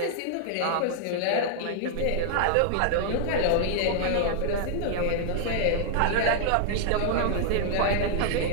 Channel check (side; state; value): both; different; correlation -0.01